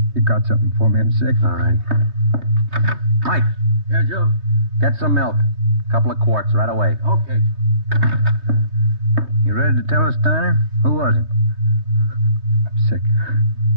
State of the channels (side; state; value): left; late; 3.2 ms